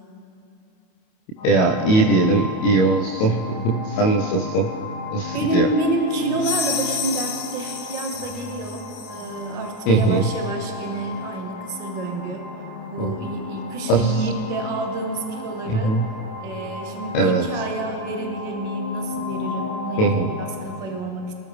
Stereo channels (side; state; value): right; late; 28 ms